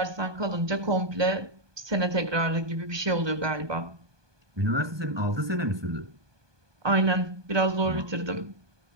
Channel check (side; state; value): left; late; 1.2 ms